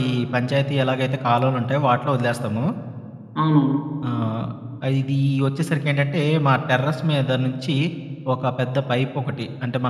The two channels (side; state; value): both; identical; correlation 1.00